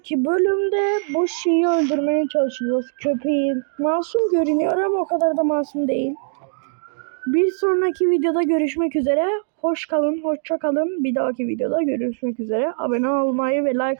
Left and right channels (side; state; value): left; silent; digital silence